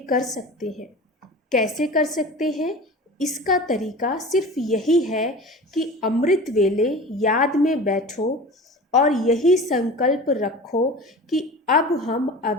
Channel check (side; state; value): both; normal; correlation 0.36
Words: कर सकते हैं। कैसे कर सकते हैं? इसका तरीका सिर्फ यही है कि अमृत वेले याद में बैठो और यही संकल्प रखो कि अब हम